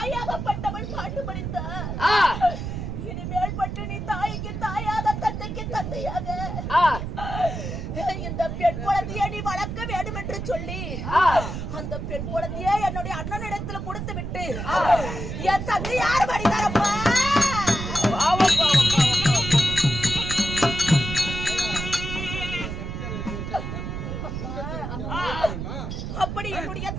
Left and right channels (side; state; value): right; noise; rumble, 5 dB below the sound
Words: பாட்டு படித்தார், இனிமேல் பட்டு நீ தாய்க்கு தாயாக தந்தைக்கு தந்தையாக இந்த பெண் குழந்தையை நீ வளர்க்க வேண்டும் என்று சொல்லி அந்த பெண் குழந்தையை என்னுடைய அண்ணனிடத்துல கொடுத்து விட்டு என் தந்தையார் படித்தாரப்பா. அப்படி என்னுடைய